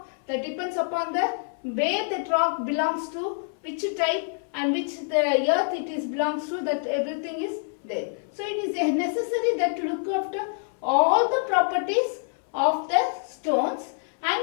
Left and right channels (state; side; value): silent; right; 61 dB below the other